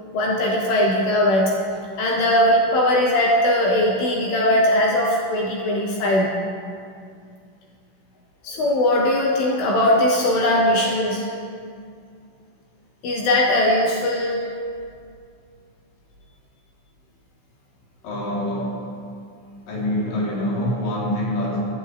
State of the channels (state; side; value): late; right; 16 ms